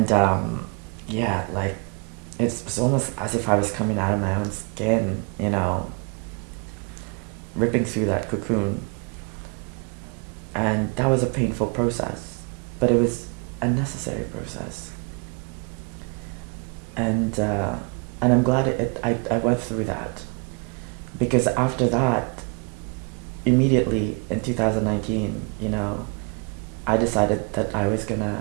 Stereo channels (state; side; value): quieter; left; 32.4 dB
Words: yeah, like it's almost as if I was coming out of my own skin, you know, ripping through that cocoon. And that was a painful process, but it was a necessary process. And I'm glad I went through that, because after that, immediately in 2019, you know, I decided that I was